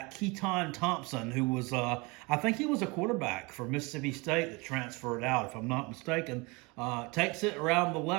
Keaton Thompson, who was, I think he was a quarterback for Mississippi State that transferred out, if I'm not mistaken. Takes it around the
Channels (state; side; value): quieter; left; 26.7 dB